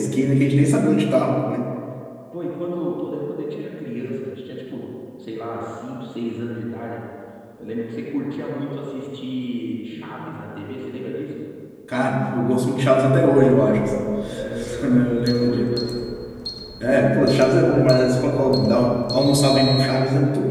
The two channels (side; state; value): both; identical; correlation 1.00